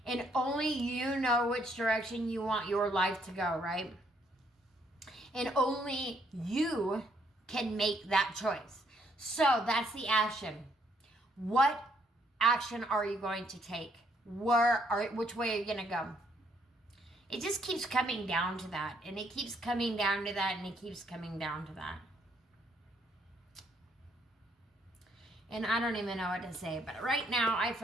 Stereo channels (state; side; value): normal; both; correlation 0.70